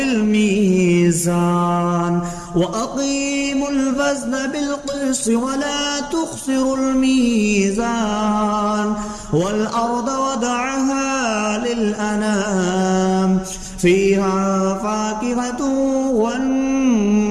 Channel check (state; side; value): identical; both; correlation 1.00